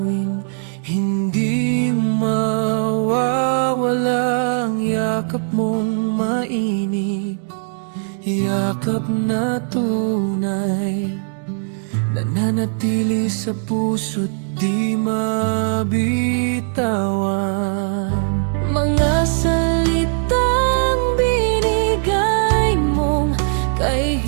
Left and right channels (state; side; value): silent; left; 61 dB below the other